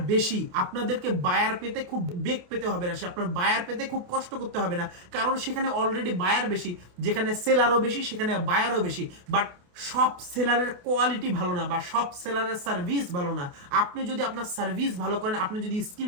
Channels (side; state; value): left; late; 28 ms